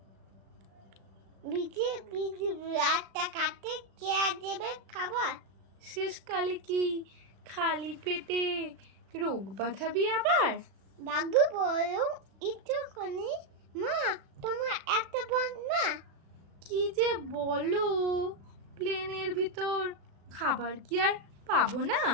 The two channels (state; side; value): late; left; 36 ms